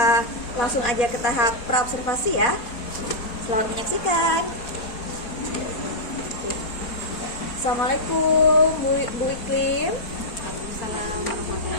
langsung aja ke tahap praobservasi ya. Selamat menyaksikan. Assalamualaikum Bu Iklim. Waalaikumsalam warahmatullahi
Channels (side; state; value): right; late; 4.3 ms